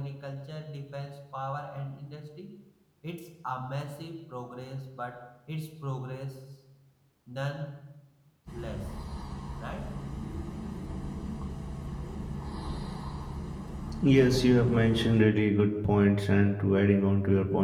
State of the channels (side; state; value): both; identical; correlation 1.00